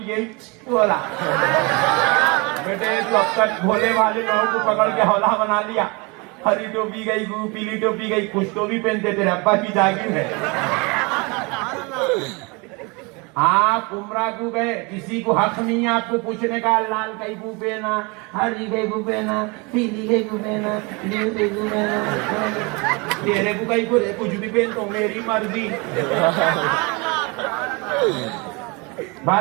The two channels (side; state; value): left; quieter; 28.5 dB